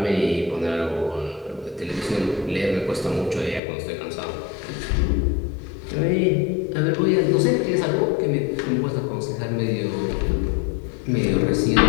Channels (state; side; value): drops out; right; at 3.6 s